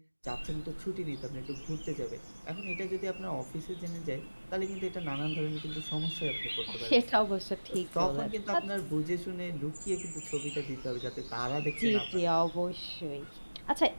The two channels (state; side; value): inverted; both; correlation -1.00